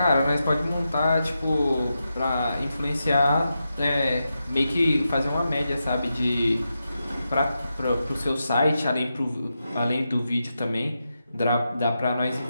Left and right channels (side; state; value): both; inverted; correlation -0.88